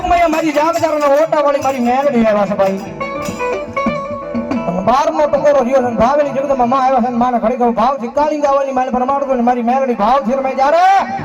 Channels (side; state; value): both; identical; correlation 1.00